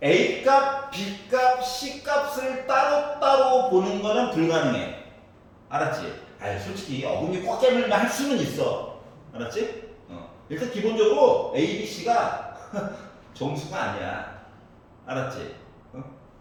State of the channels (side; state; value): both; identical; correlation 1.00